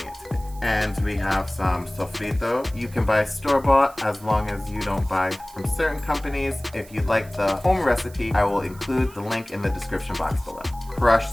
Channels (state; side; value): noise; right; hiss, 22 dB below the sound